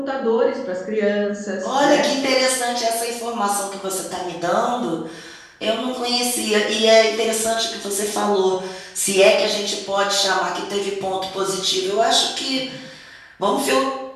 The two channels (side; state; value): both; identical; correlation 1.00